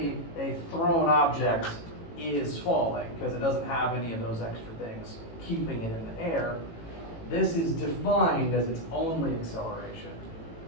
a thrown object is falling because it doesn't have any of those extra things keeping it in the air, this is defined as its only acceleration.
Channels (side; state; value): right; late; 18 ms